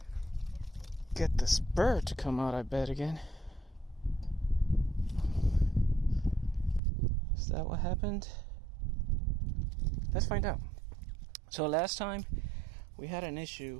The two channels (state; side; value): drops out; left; at 6.8 s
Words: get the spur to come out, I bet, again. Is that what happened? Let's find out. So last time we had an